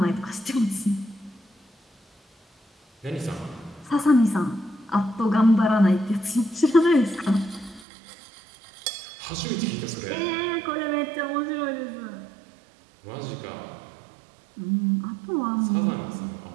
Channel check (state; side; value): drops out; left; at 7.9 s